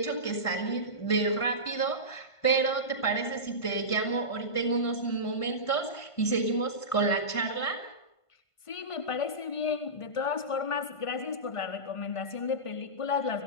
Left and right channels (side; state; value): right; late; 1.5 ms